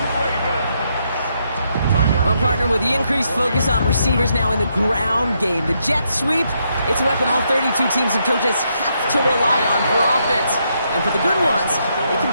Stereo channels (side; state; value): both; inverted; correlation -0.77